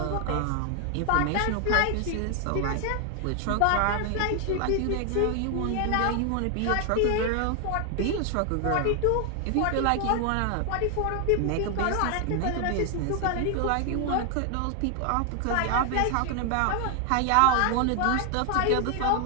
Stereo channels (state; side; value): different; both; correlation 0.00